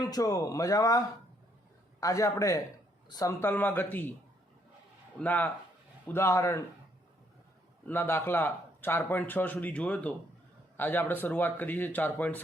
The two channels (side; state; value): both; normal; correlation 0.70